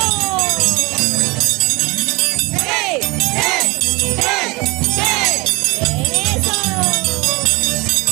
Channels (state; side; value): quieter; left; 25.0 dB